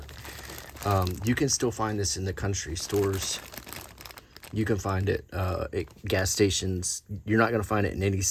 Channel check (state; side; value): identical; both; correlation 1.00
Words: You can still find this in the country stores. You can find it at gas stations. You're not going to find it in any